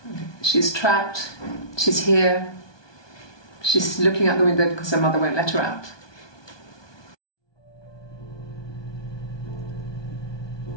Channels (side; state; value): right; late; 1.2 ms